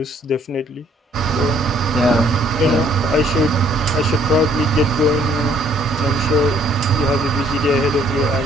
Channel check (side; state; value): both; normal; correlation 0.63